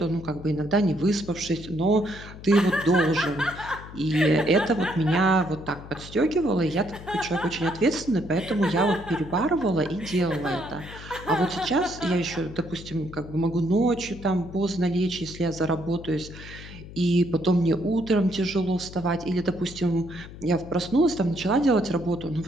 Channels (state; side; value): noise; left; hum, 15 dB below the sound